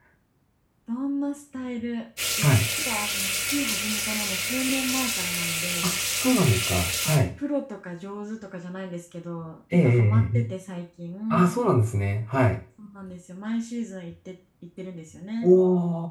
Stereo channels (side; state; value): both; identical; correlation 1.00